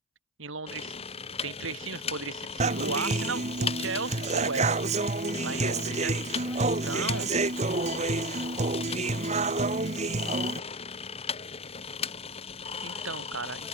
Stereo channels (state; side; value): normal; both; correlation 0.24